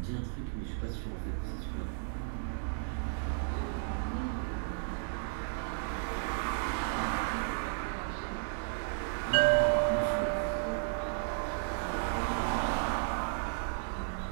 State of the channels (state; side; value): silent; left; digital silence